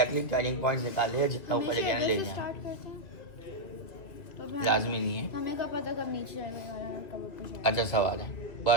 टर्निंग पॉइंट्स निकाल लिया, जितना ऊपर लेके आना ले जाए, लाजमी नहीं है। हमें क्या पता कब नीचे जाएगा और कब ऊपर जाएगा। अच्छा सवाल है,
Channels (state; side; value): late; right; 2.3 ms